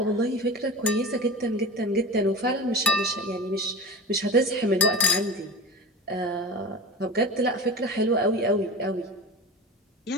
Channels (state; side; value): normal; both; correlation 0.32